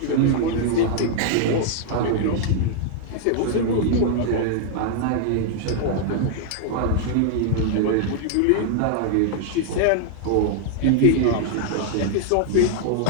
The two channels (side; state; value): both; different; correlation 0.00